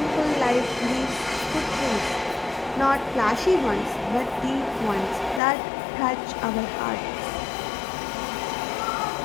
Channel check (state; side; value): drops out; right; at 5.4 s